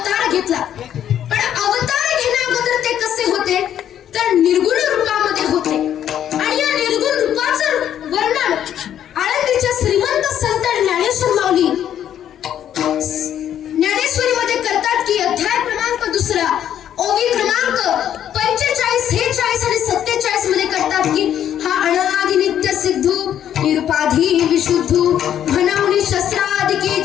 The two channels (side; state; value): right; quieter; 10.3 dB